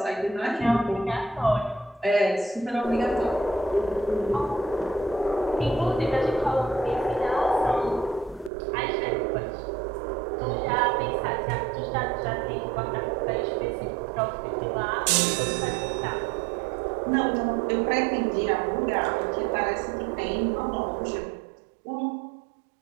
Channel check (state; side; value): drops out; left; at 8.5 s